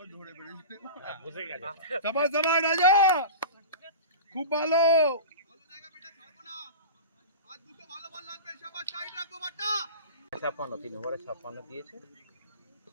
সাবাস সাবাস রাজা, খুব ভালো। 56 3 ওভারে 56 দিয়েছে।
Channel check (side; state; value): both; inverted; correlation -0.32